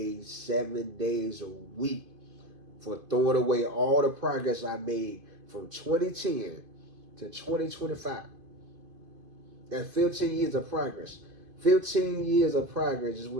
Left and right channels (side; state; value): left; late; 2.5 ms